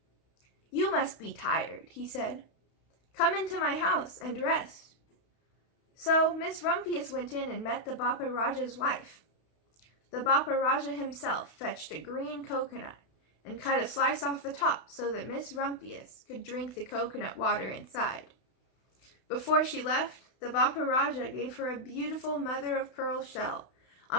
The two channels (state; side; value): late; right; 32 ms